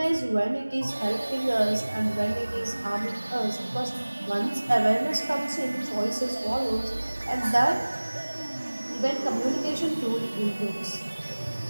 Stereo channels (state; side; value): inverted; both; correlation -1.00